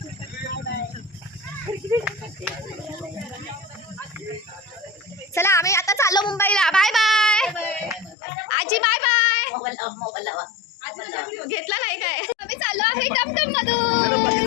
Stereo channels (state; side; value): drops out; right; at 8.2 s